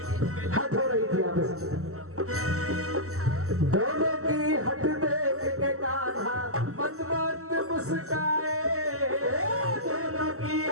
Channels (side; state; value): left; late; 0.64 ms